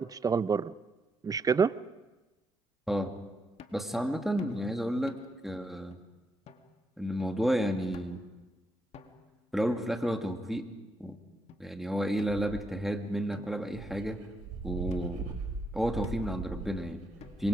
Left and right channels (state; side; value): normal; both; correlation 0.80